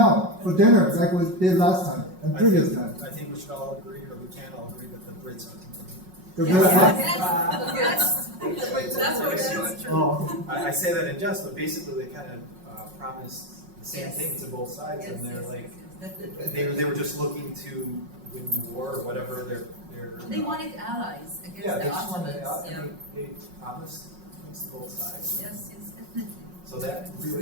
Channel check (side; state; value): left; late; 5.5 ms